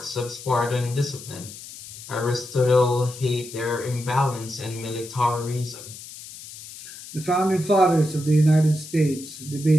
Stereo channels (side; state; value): left; noise; hiss, 14 dB below the sound